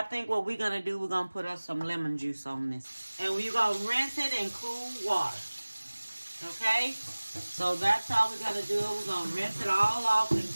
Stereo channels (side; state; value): both; inverted; correlation -1.00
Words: think what we're going to do, we're going to put us some lemon juice on this. And we're going to rinse it in cool water, okay? So that's how we're going to do it. We're going to rinse it all off in